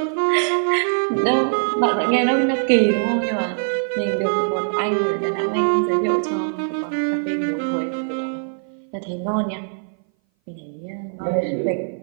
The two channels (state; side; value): silent; left; 59 dB below the other